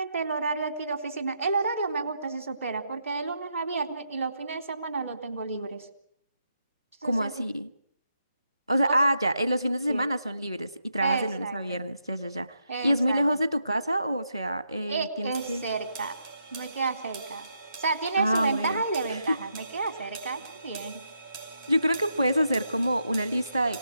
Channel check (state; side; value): inverted; both; correlation -0.81